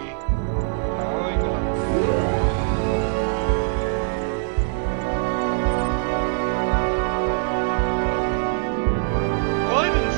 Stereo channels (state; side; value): silent; left; digital silence